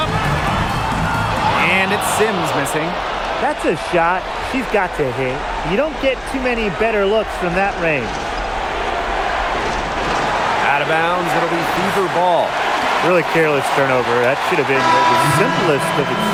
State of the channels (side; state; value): both; identical; correlation 1.00